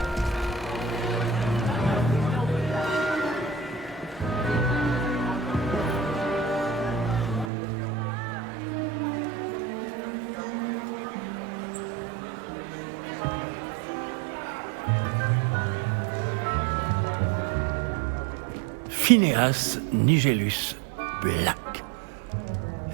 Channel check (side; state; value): left; drops out; at 7.5 s